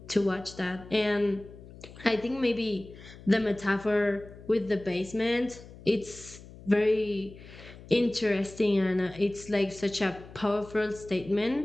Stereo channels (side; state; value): left; noise; hum, 18 dB below the sound